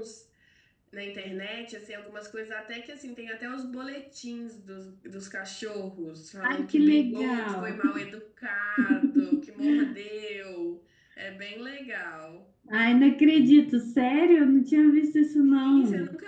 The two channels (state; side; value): identical; both; correlation 1.00